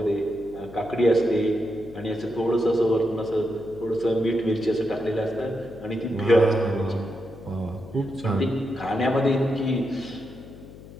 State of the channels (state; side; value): noise; left; hum, 17 dB below the sound